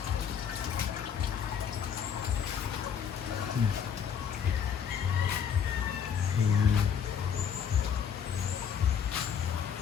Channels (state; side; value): quieter; right; 7.7 dB